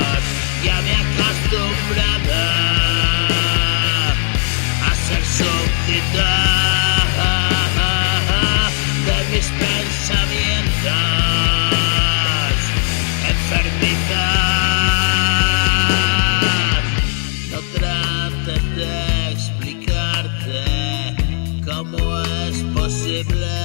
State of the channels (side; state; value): right; silent; digital silence